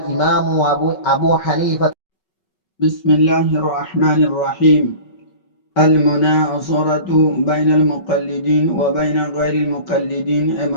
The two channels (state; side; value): late; right; 5.3 ms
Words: أبو حنيفة. بسم الله الرحمن الرحيم. المناصرة بين المقلدين وبين غير المقلدين